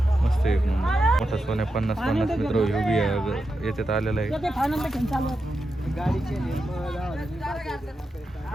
मस्त. एक मोठा सोन्या 50 मित्र बी याच्यात आलेला आहे.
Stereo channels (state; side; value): normal; both; correlation 0.88